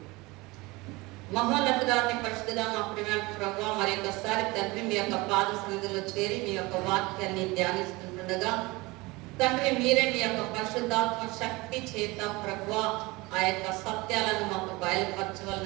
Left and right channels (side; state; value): left; quieter; 23.0 dB